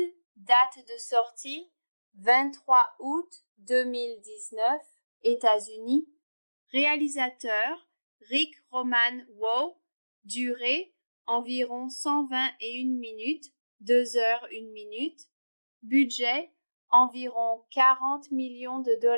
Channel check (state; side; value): inverted; both; correlation -1.00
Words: date de sortie, 23 août 2019, États-Unis. Réalisateur, Rick Roman Waugh. Durée, environ 121 minutes, 2 heures 1 minute. Budget, environ 40 millions de